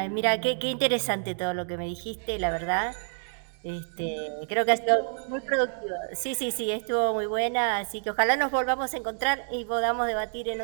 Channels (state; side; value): silent; left; digital silence